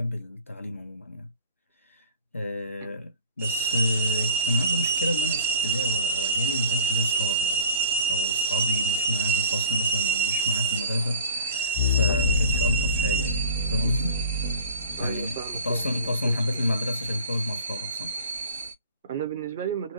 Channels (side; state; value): both; inverted; correlation -0.43